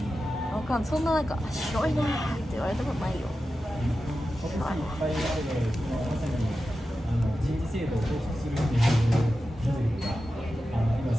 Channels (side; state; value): both; normal; correlation 0.92